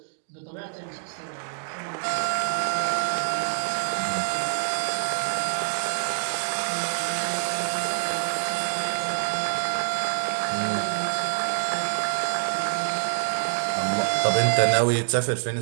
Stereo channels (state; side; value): silent; left; digital silence